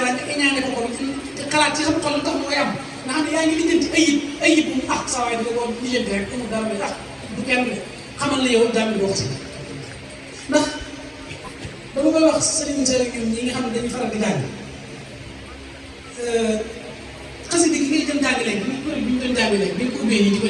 nga iñaane ko ko xalaat ci sa xol lu tax mu koy am nga xam ne yaa ngi lijjanti ayib bu ah saa waay dina ko lijjanti rek amul dara may ah du kenn de xamal na yow jàng boo xasida ndax dama koy wax sëriñ sa ñoom ñi nga xam ne dañuy faral di jàng xasida gi ngay jëm jàng léegi bi ñu doon jàng léegi bi ñu ko ubbee nii di ko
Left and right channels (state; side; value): identical; both; correlation 1.00